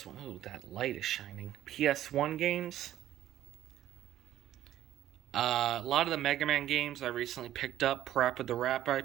Oh, that light is shining. PS1 games. A lot of the Mega Man games I recently picked up. Parappa the Rapper I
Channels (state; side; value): quieter; left; 12.7 dB